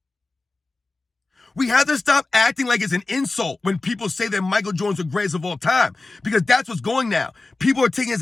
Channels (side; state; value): right; quieter; 3.3 dB